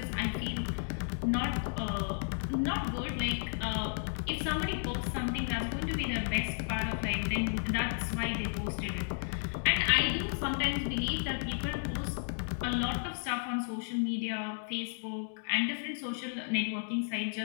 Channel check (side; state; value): right; silent; digital silence